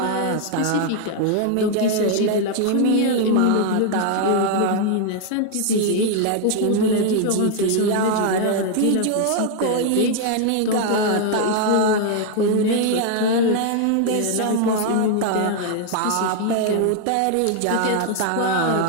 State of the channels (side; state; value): both; different; correlation 0.00